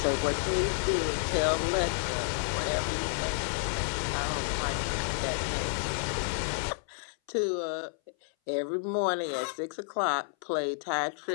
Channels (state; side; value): silent; right; 57 dB below the other